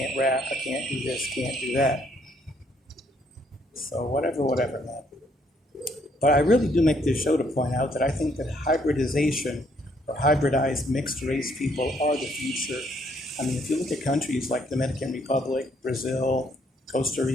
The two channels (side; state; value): both; normal; correlation 0.68